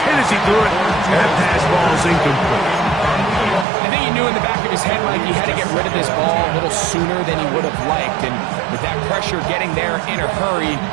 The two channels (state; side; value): drops out; left; at 3.7 s